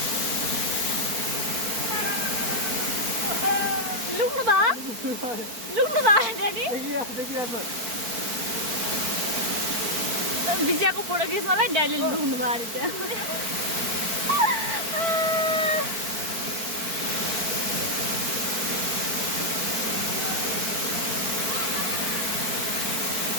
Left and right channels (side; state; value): left; late; 4.5 ms